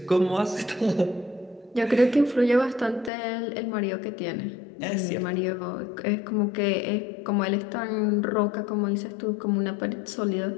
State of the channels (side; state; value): right; drops out; at 3.1 s